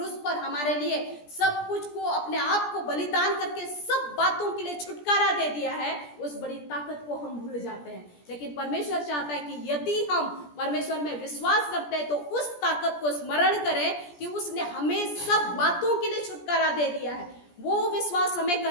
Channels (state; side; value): late; right; 17 ms